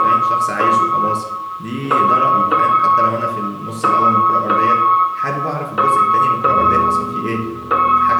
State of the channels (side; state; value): both; identical; correlation 1.00